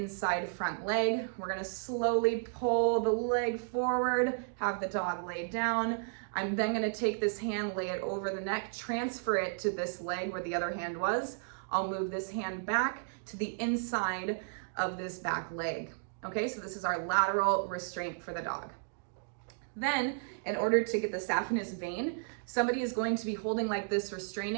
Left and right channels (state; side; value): silent; left; digital silence